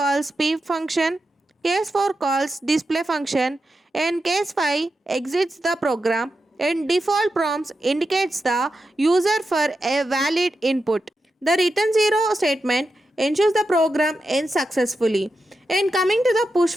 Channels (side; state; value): both; normal; correlation 0.89